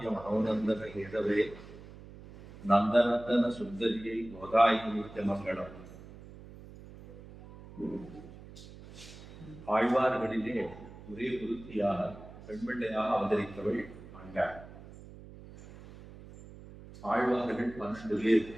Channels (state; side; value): noise; right; hum, 17 dB below the sound